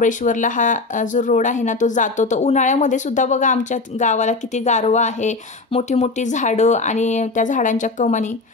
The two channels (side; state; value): right; quieter; 3.7 dB